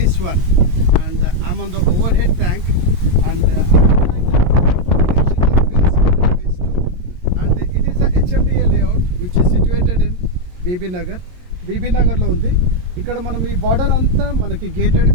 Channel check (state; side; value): late; left; 22 ms